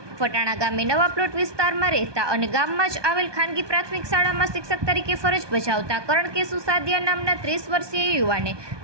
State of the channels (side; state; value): left; late; 1.2 ms